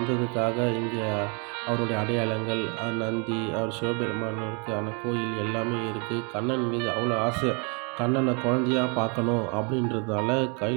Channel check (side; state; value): left; quieter; 34.6 dB